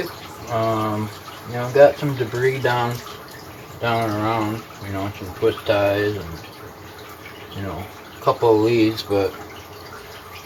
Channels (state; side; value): identical; both; correlation 1.00